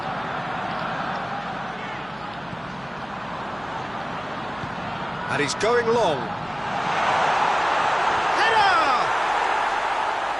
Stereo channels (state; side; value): noise; right; hum, 25 dB below the sound